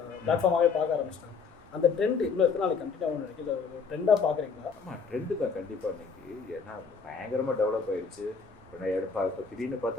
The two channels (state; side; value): quieter; right; 5.4 dB